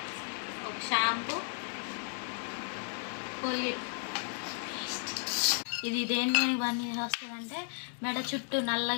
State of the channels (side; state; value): right; silent; 55 dB below the other